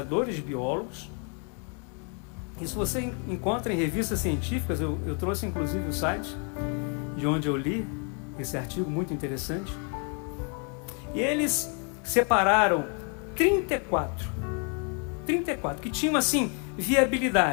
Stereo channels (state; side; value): quieter; right; 39.0 dB